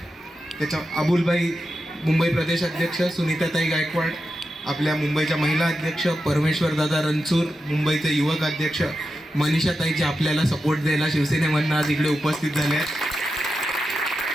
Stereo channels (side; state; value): both; normal; correlation 0.89